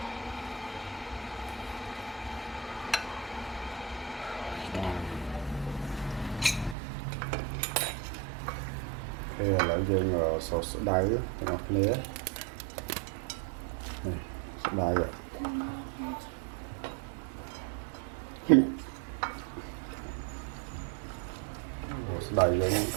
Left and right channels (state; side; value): drops out; left; at 6.8 s